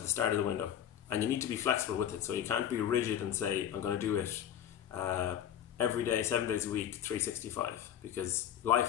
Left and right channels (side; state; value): right; quieter; 9.9 dB